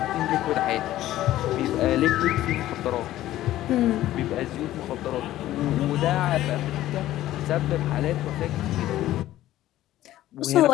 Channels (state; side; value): quieter; right; 14.2 dB